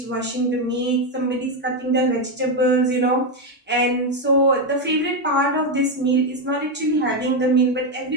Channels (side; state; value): both; normal; correlation 0.07